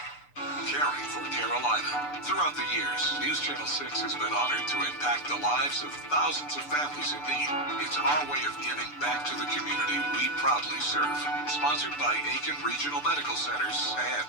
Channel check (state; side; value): late; right; 6.8 ms